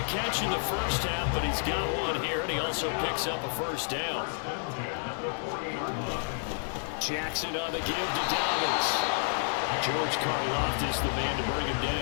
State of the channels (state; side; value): silent; right; 58 dB below the other